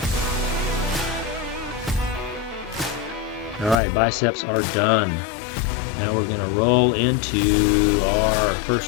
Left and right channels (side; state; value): right; drops out; at 3.8 s